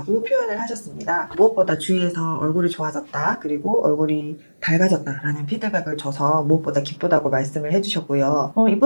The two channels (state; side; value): inverted; both; correlation -1.00